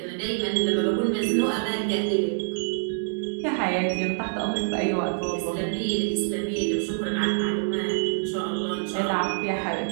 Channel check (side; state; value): left; silent; digital silence